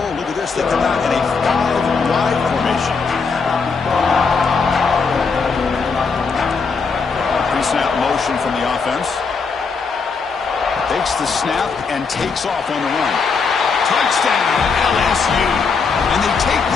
Look at this. They come out in a 5-wide formation. Pre-snap motion from the offense. Takes the snap and takes off on the run. Touchdown, LSU. And they take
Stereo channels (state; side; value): quieter; right; 5.0 dB